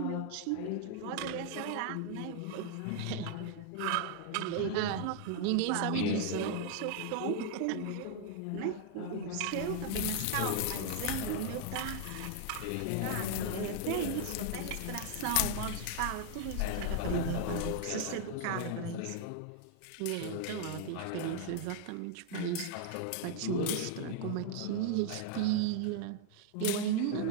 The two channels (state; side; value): different; both; correlation 0.00